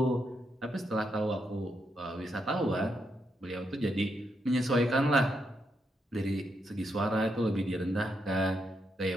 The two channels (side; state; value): both; normal; correlation 0.81